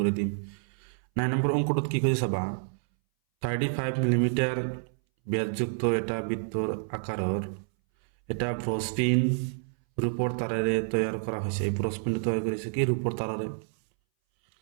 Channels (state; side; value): silent; left; 59 dB below the other